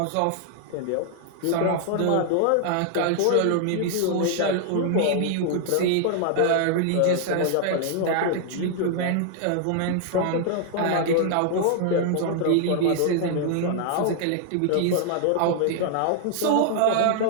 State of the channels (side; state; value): both; different; correlation 0.00